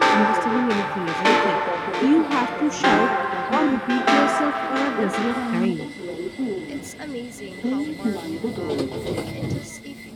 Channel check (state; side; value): identical; both; correlation 1.00